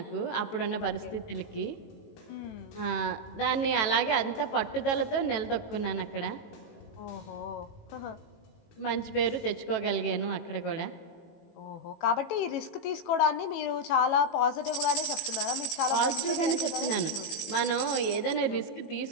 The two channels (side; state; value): right; late; 18 ms